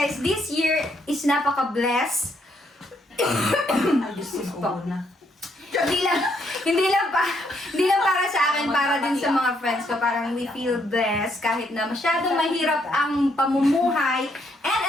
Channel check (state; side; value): normal; both; correlation 0.73